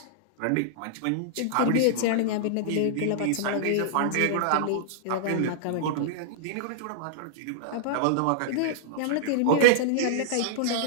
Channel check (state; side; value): different; both; correlation -0.01